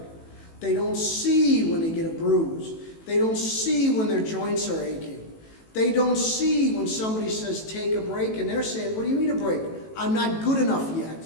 They don't see when they get a bruise. They don't see when their joints are aching. They don't see when somebody says, take a break, and they're saying, what do you mean a break? I'm not good enough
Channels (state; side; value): late; right; 18 ms